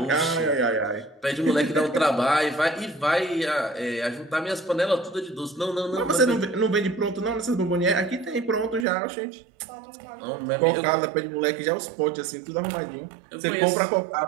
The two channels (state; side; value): drops out; left; at 8.8 s